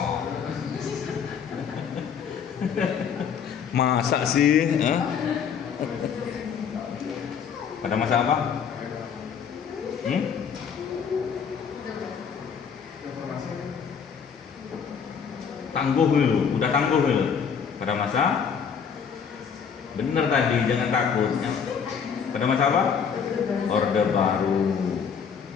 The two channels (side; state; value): right; quieter; 7.0 dB